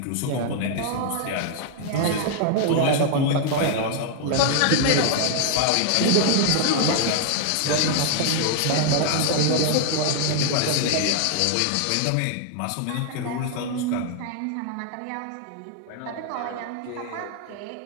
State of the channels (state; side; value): different; both; correlation 0.00